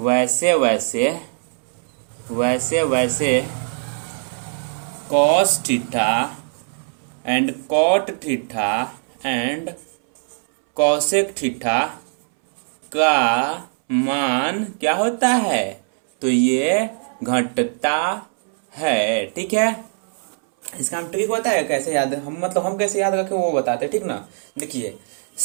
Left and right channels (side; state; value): left; silent; 65 dB below the other